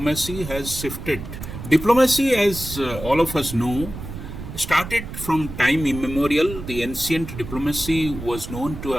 has shifted. Diplomacy, as all of us know, started from time immemorial. The ancient diplomacy was known to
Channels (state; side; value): noise; right; rumble, 10 dB below the sound